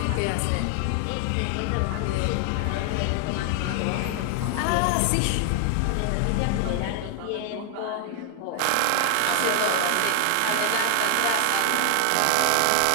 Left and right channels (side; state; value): both; different; correlation 0.00